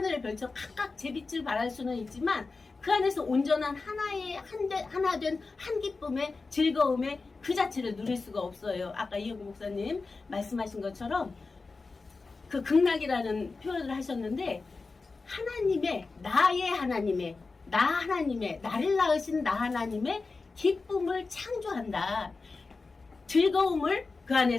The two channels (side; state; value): right; quieter; 4.0 dB